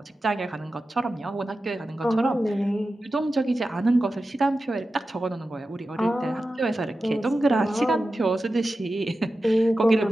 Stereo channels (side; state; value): both; normal; correlation 0.93